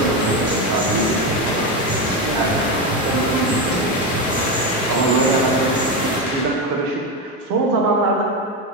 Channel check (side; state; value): both; normal; correlation 0.13